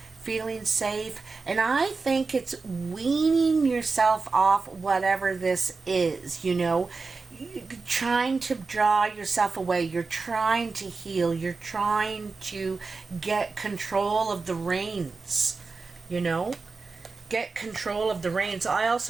feeling safe, and I think it's weaning yourself off whatever this is, you know. You're trying to draw yourself away. You're trying to heal. You're trying to get control of the reins, you know. Get control of the reins. I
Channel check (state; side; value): quieter; left; 4.2 dB